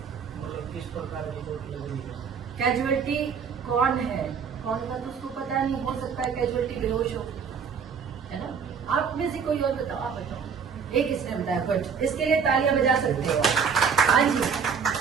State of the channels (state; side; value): quieter; left; 6.4 dB